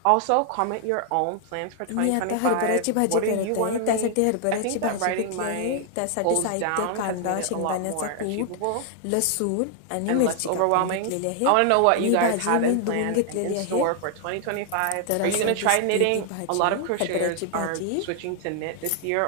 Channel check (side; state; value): both; different; correlation 0.00